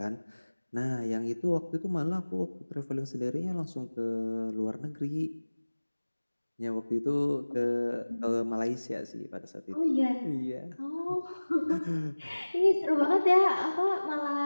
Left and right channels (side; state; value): both; inverted; correlation -1.00